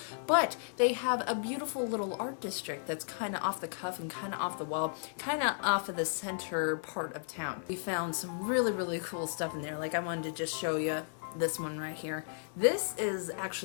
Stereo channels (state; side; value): silent; right; 55 dB below the other